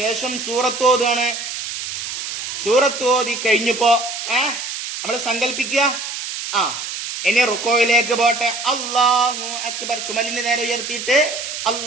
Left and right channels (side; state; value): right; noise; hiss, 6 dB below the sound